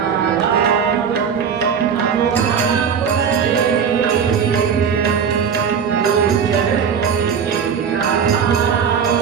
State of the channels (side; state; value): left; quieter; 7.1 dB